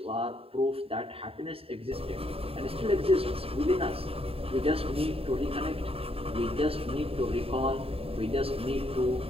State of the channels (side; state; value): left; late; 0.27 ms